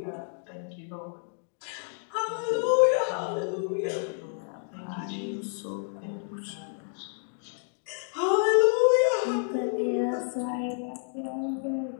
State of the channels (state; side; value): silent; right; 58 dB below the other